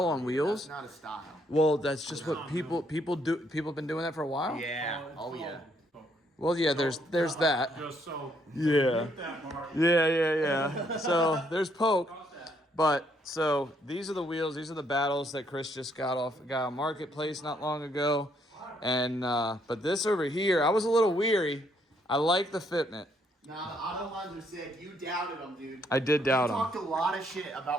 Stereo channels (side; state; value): both; normal; correlation 0.70